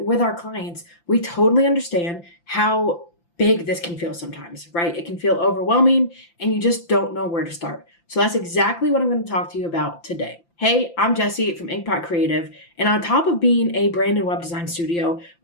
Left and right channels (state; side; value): late; right; 5.9 ms